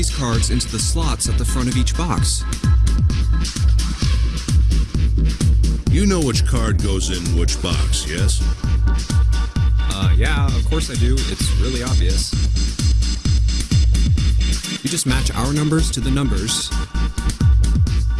cards into the slots at the front of each box. You know which card goes in which box, yes? Yeah, of course I do. It's really obvious. You just match our numbers to the numbers.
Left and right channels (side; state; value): both; identical; correlation 1.00